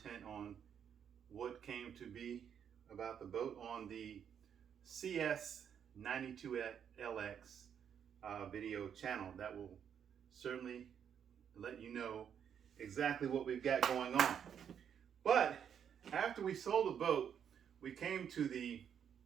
on what came to be about the boat on the CS92LX video channel. That will certainly let you know exactly what we've got going on. But after we sold the boat, we came to the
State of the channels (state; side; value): quieter; left; 8.3 dB